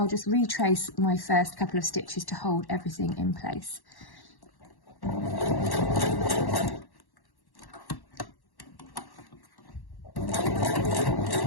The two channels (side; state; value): right; late; 1.1 ms